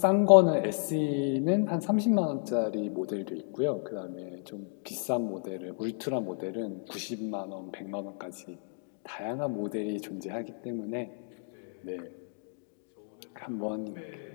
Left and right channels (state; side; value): silent; right; 57 dB below the other